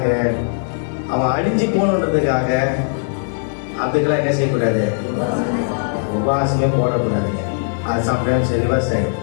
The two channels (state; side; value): silent; right; digital silence